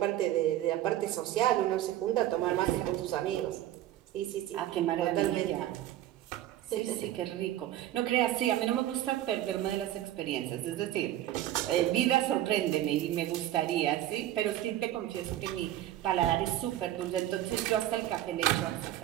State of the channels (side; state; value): left; quieter; 13.3 dB